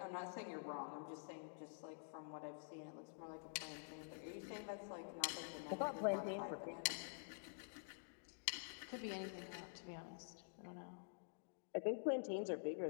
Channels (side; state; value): right; silent; digital silence